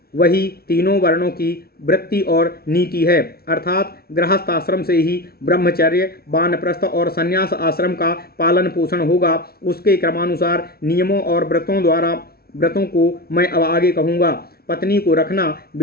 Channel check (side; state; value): right; late; 0.44 ms